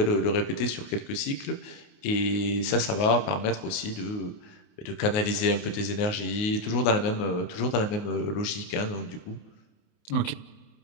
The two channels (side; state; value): right; late; 28 ms